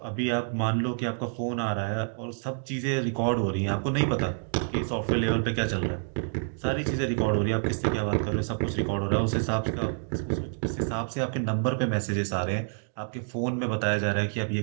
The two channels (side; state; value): left; silent; digital silence